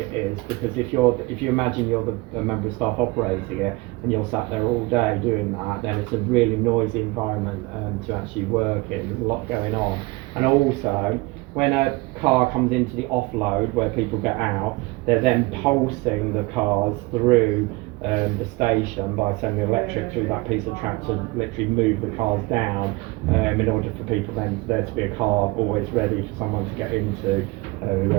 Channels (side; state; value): left; quieter; 23.4 dB